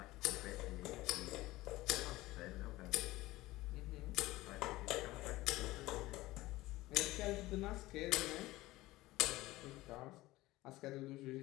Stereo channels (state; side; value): quieter; right; 18.4 dB